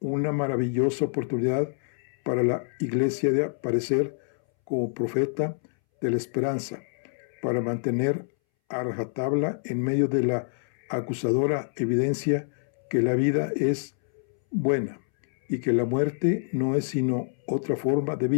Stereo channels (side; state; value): right; silent; 60 dB below the other